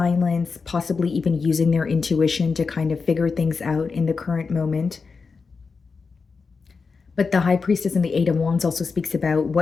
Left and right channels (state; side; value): quieter; right; 4.8 dB